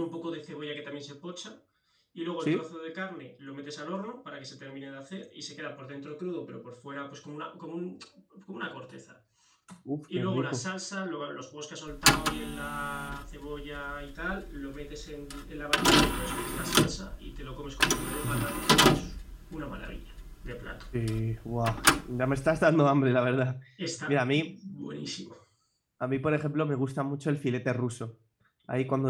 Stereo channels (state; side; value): identical; both; correlation 1.00